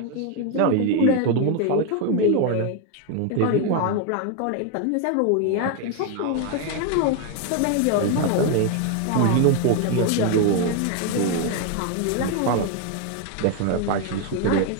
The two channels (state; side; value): different; both; correlation 0.01